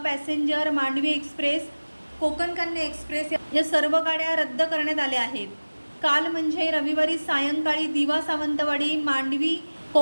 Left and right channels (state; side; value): inverted; both; correlation -1.00